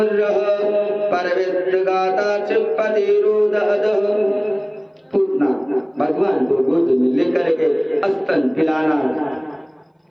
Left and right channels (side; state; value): both; identical; correlation 1.00